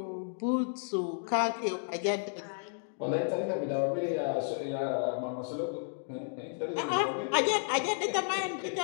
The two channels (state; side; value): silent; right; digital silence